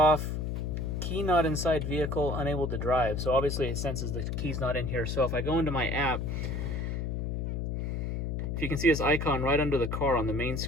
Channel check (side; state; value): left; noise; hum, 2 dB below the sound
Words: key not inside vehicle, unable to drive. So obviously it senses the key's not in here. So if I go into my app, if you can see this icon right under the car on the main